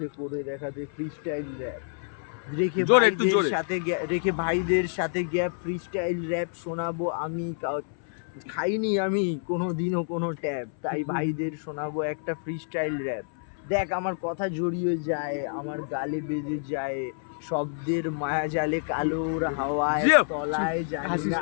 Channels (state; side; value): silent; right; 59 dB below the other